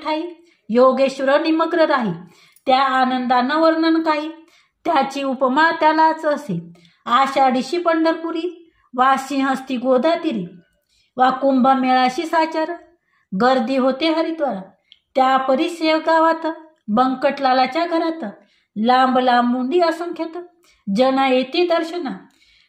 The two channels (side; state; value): both; identical; correlation 1.00